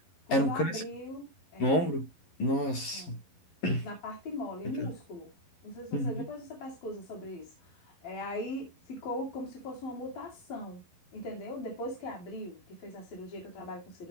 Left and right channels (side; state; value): right; late; 11 ms